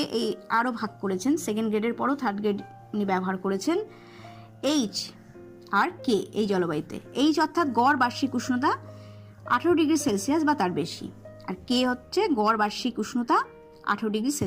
এই আরও ভাগ করেছেন, সেকেন্ড গ্রেডের পরও থার্ড গ্রেড উনি ব্যবহার করেছেন। এইচ আর কে এই জলবায়ুতে, এইচ অর্থাৎ গড় বার্ষিক উষ্ণতা 18°C বা তার বেশি, আর কে হচ্ছে গড় বার্ষিক উষ্ণতা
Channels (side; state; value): both; identical; correlation 1.00